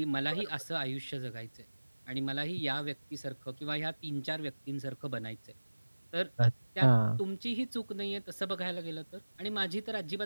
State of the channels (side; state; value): both; inverted; correlation -1.00